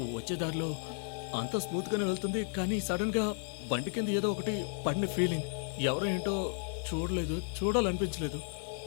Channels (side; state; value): right; silent; 55 dB below the other